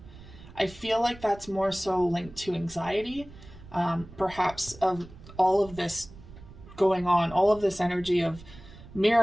I feel like that's more so linked to anxiety, perhaps of all of this going on, all of this energy of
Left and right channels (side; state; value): right; noise; rumble, 18 dB below the sound